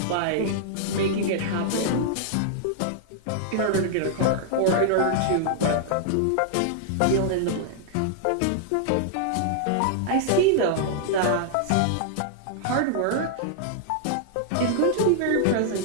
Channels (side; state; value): both; different; correlation -0.01